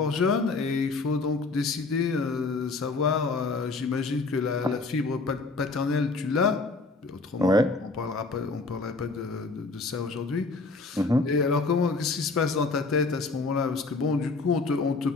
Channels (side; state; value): right; quieter; 3.7 dB